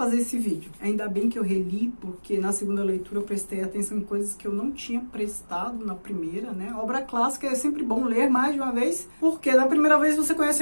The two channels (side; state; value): both; inverted; correlation -1.00